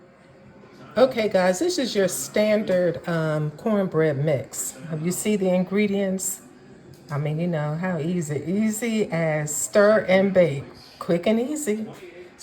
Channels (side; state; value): both; identical; correlation 1.00